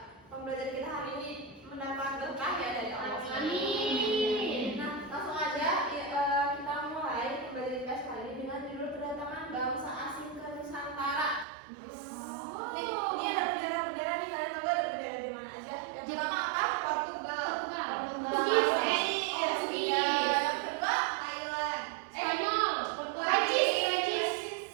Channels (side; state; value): left; drops out; at 11.5 s